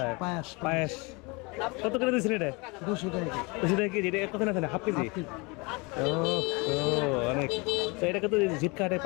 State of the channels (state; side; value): quieter; right; 27.8 dB